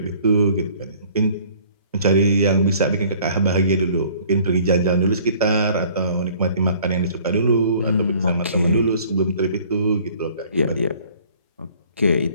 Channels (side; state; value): both; inverted; correlation -0.54